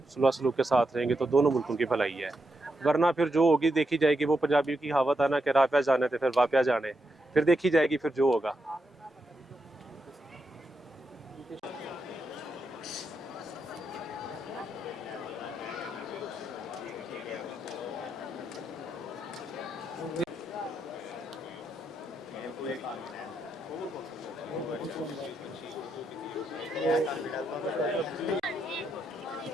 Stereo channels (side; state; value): both; normal; correlation 0.83